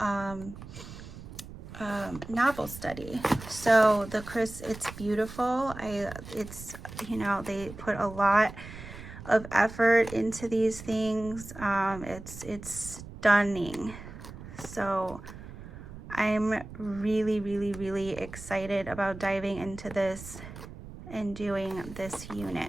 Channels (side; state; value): right; noise; rumble, 13 dB below the sound